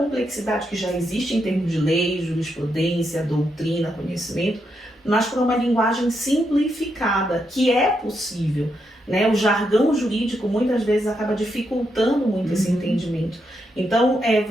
que já existe em termos de lei, jurisprudência, doutrina, conhecimento, mas para uma linguagem simplificada, que é possível. Né? O jargão jurídico muitas vezes acaba dificultando muito esse entendimento. Então,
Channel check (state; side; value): normal; both; correlation 0.81